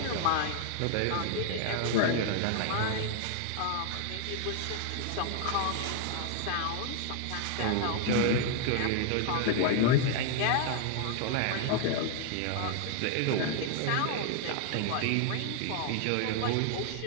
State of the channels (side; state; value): both; different; correlation 0.00